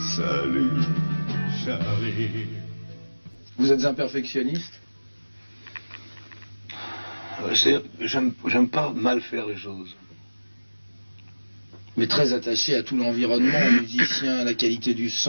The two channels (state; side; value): inverted; both; correlation -1.00